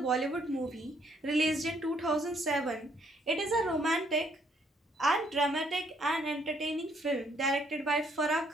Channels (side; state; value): both; normal; correlation 0.68